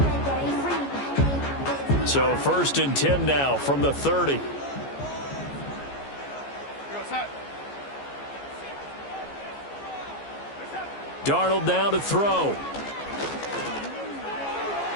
So 1st and 10 now from the 30. Darnold now to throw.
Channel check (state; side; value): late; right; 14 ms